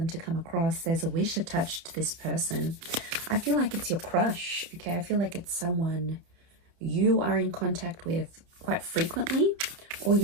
to come across, there's a wish attached to this person. I feel like it's your crush. Okay, I feel like it's someone you are in contact with quite frequently, or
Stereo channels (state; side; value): late; left; 30 ms